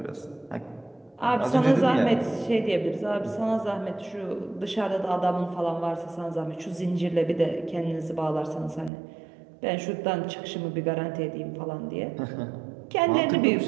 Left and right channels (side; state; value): left; drops out; at 8.9 s